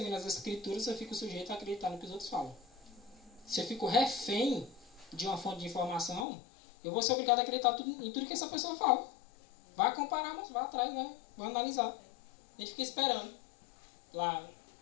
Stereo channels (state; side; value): drops out; right; at 6.2 s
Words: as escrituras, eu fico sujeito a acreditar no que os outros falam. Se eu fico refém de uma fonte de informação, eu vou ser obrigado a acreditar em tudo que essa pessoa fala. Vai comparar, mas vai atrás, vai analisar. A gente fica esperando. Lá,